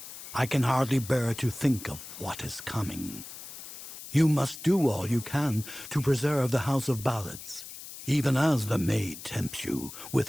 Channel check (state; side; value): noise; left; hiss, 13 dB below the sound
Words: I can hardly bear to think of what is coming. You must do all you can to preserve the House of Ballads, even as the maid tempts you with